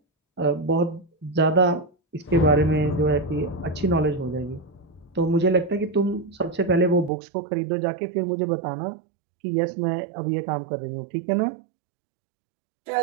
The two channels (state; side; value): drops out; left; at 7.1 s